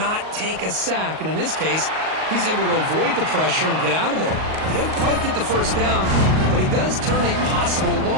take a sack. And in this case, he's able to avoid the pressure and get out of there. He doesn't quite get the 1st down, but he does turn a possible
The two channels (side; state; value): left; late; 38 ms